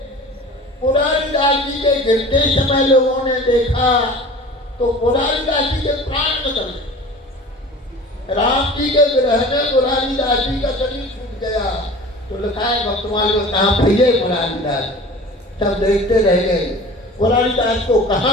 पुरारीदास जी के गिरते समय लोगों ने देखा तो पुरारीदास जी के प्राण निकल गए। राम जी के विरह में पुरारीदास जी का शरीर छूट गया। तो लिखा है भक्तमाल में, कहाँ भैया पुरारीदास, सब देखते रह गए। पुरारीदास को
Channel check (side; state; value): both; normal; correlation 0.41